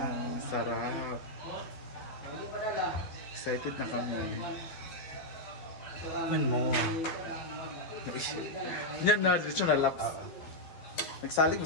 sarap. Excited na kami. Man mo. Yan na, diretso na laps. Nagsalig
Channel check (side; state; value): right; late; 12 ms